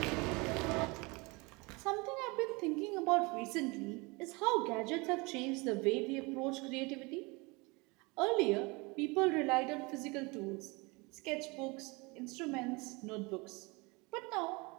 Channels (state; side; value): quieter; left; 26.7 dB